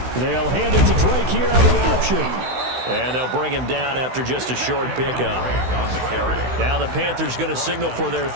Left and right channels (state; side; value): late; left; 16 ms